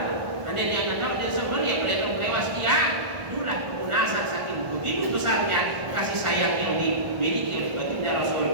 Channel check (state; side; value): late; left; 1.5 ms